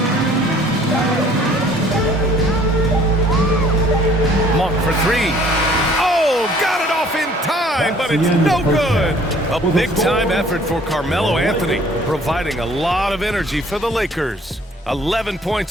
Monk for 3. Oh, got it off in time, but it's no good. A big-time effort for Carmelo Anthony, providing a lot of energy for the Lakers. 11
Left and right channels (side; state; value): both; normal; correlation 0.56